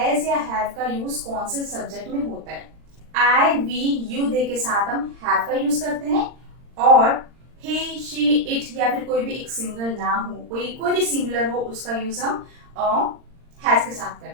या हैव का यूज कौन से सब्जेक्ट में होता है। आई, वी, यू दे के साथ हम हैव का यूज करते हैं, और ही, शी, इट या फिर कोई भी एक सिंगल नाम हो, कोई भी सिंगुलर हो, उसका यूज हम हैज के साथ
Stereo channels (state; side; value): late; left; 39 ms